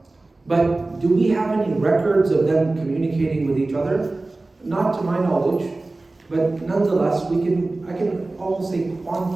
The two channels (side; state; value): left; quieter; 3.1 dB